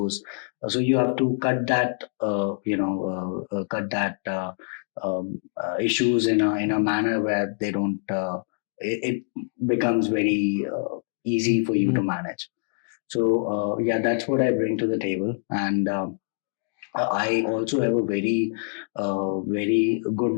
So you have to cut that issues in a manner where they don't it becomes very easy for you to manage. So yeah, that's what I bring to the table. And I also have a very good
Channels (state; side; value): silent; right; digital silence